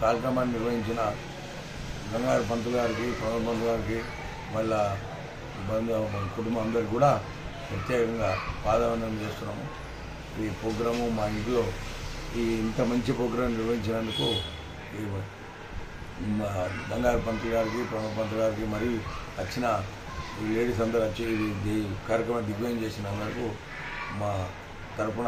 కార్యక్రమాన్ని నిర్వహించిన గంగాధర పంతులు గారికి, ప్రణవ్ పంతులు గారికి, వాళ్ళ కుటుంబం అందరికి కూడా ప్రత్యేకంగా పాదవందనం చేస్తున్నాము. ఈ ప్రోగ్రాము మా ఇంట్లో ఇంత మంచి ప్రోగ్రాం నిర్వహించినందుకు గంగాధర పంతులు గారికి, ప్రణవ్ పంతులు గారికి, మరి వచ్చిన ఈ లేడీస్ అందరూ వచ్చి ఈ కార్యక్రమం దిగ్విజయం చేసిన అందరికీ మా తరఫున,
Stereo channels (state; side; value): identical; both; correlation 1.00